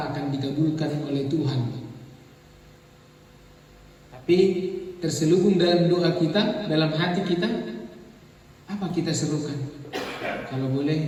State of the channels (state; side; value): identical; both; correlation 1.00